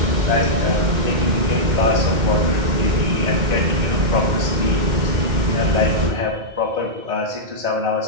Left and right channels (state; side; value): late; left; 2.1 ms